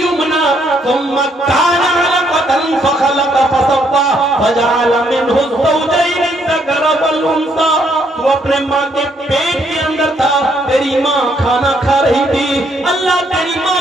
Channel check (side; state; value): both; normal; correlation 0.71